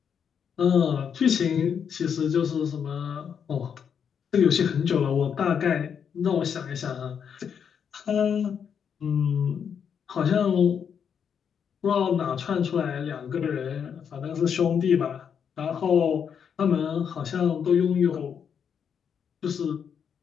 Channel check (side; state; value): right; quieter; 7.5 dB